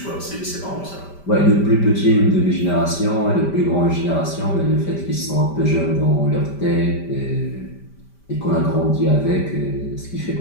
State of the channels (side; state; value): right; late; 5.1 ms